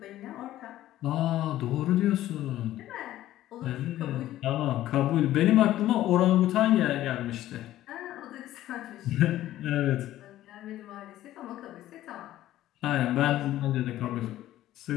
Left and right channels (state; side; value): quieter; right; 14.0 dB